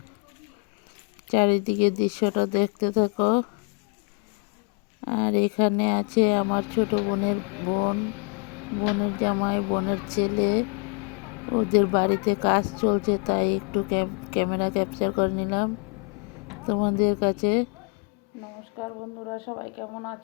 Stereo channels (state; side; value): quieter; right; 35.1 dB